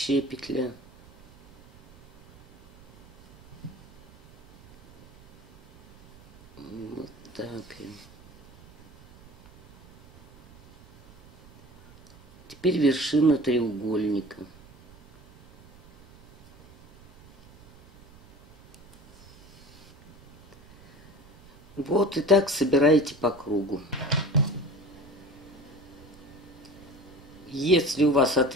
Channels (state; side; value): noise; right; rumble, 25 dB below the sound